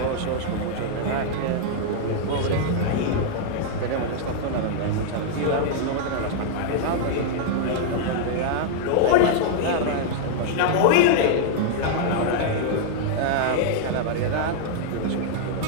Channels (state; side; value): different; both; correlation -0.01